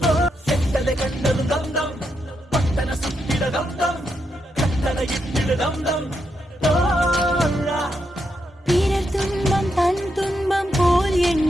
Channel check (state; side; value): normal; both; correlation 0.82